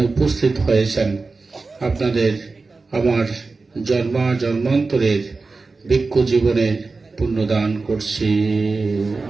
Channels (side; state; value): left; quieter; 3.9 dB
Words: উপস্থিত হয়েছেন, আপনাদের আমার জন্মান্তরের ভিক্ষু জীবনের পুণ্যদান করছি।